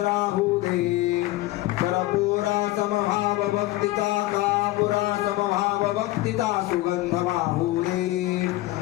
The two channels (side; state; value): right; quieter; 18.0 dB